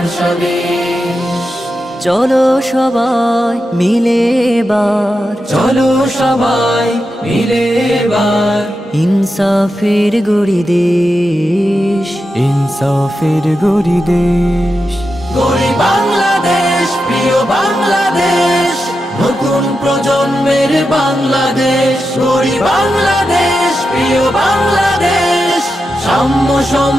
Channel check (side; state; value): both; normal; correlation 0.89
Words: স্বদেশ। চলো সবাই মিলে এবার, চলো সবাই মিলে এবার ইনসাফের গড়ি দেশ, ইনসাফের গড়ি দেশ। গড়ি বাংলাদেশ, প্রিয় বাংলাদেশ, নতুন প্রজন্মের বাংলাদেশ। গড়ি বাংলাদেশ, প্রিয় বাংলাদেশ, সাম্য